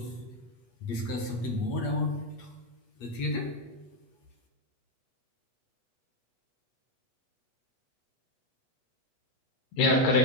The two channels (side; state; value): right; late; 8.4 ms